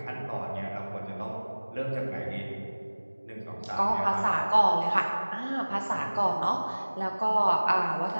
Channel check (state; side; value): inverted; both; correlation -1.00